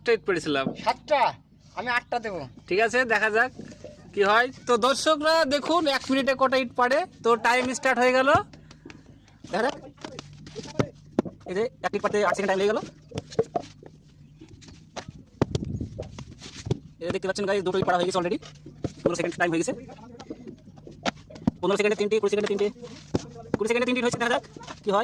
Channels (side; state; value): both; identical; correlation 1.00